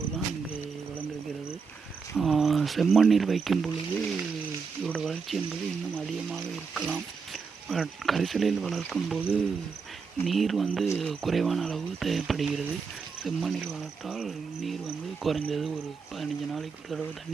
தான் இங்கே வளர்ந்திருக்கிறது. செம்மண்ணில் வைக்கும் பொழுது இதோட வளர்ச்சி என்பது இன்னும் அதிகமாக இருக்கலாம். கரிசலில் வளர்க்கும்போது நீர் வந்து குறைவான அளவு தேவைப்படுகிறது. செம்மண்ணில் வளர்த்தால் நீர் வந்து குறைஞ்சது ஒரு 15 நாளைக்கு ஒரு தடவை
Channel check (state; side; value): quieter; left; 5.3 dB